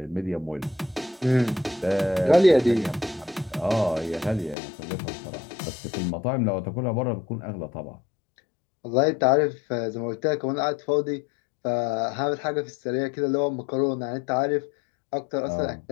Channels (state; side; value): drops out; right; at 4.5 s